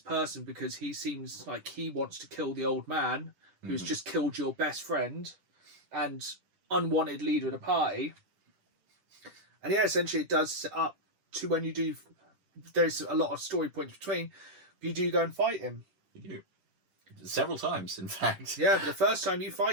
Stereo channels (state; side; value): late; left; 10 ms